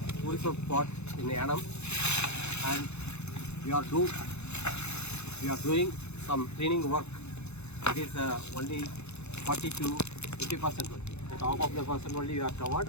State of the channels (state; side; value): late; right; 0.81 ms